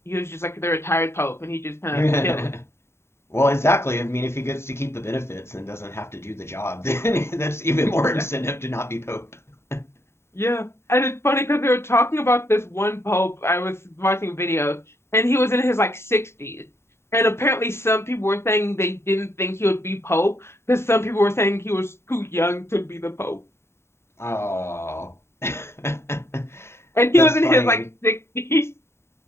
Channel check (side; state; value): right; late; 0.12 ms